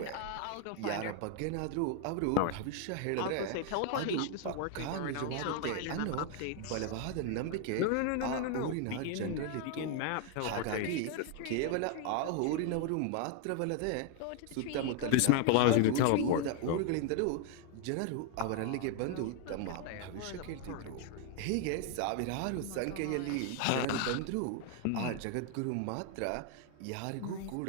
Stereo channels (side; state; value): both; different; correlation 0.00